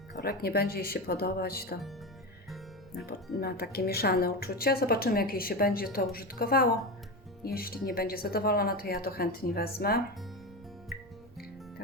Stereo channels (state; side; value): noise; right; rumble, 24 dB below the sound